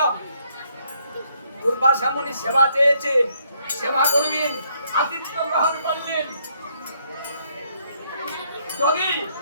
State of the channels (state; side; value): inverted; both; correlation -0.71